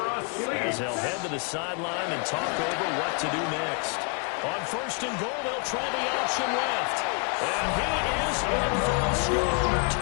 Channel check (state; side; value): quieter; right; 39.1 dB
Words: us. As they'll head to the sideline and talk over what to do next. On 1st and goal, they'll try the option left. And he is in for a score.